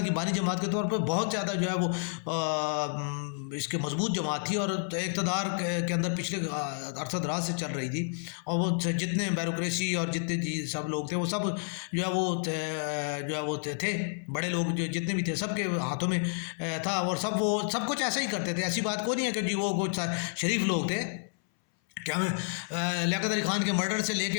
کی بانی جماعت کے طور پہ بہت زیادہ جو ہے وہ اس کے مضبوط جماعت تھی، اور اقتدار کے اندر پچھلے عرصہ دراز سے چل رہی تھی، اور وہ جتنے بیوروکریسی اور جتنے سب لوگ تھے وہ سب جو ہے وہ تھے بڑے لوگ، جو جتنے بھی تھے سب کے ہاتھوں میں تھا، اور وہ سب کچھ ایسا ہی کرتے تھے، ایسی بات کوئی نہیں ہے کہ جی وہ کچھ شریف لوگ تھے۔ کیا لیاقت علی خان کے مرڈر سے لے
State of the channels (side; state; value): right; silent; 58 dB below the other